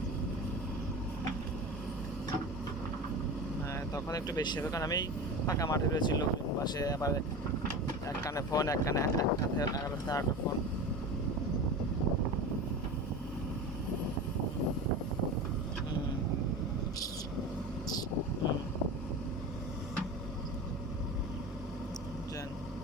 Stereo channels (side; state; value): both; normal; correlation 0.30